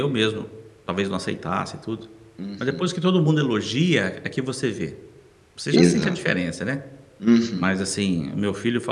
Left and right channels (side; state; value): both; identical; correlation 1.00